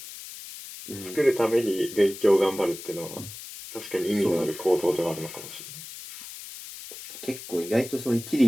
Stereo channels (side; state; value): left; noise; hiss, 12 dB below the sound